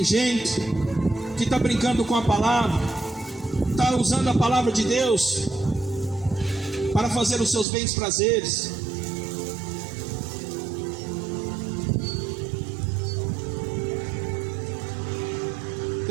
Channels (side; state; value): left; drops out; at 7.7 s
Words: gente que está brincando com a palavra, está usando a palavra de Deus para fazer os seus bens prazeres.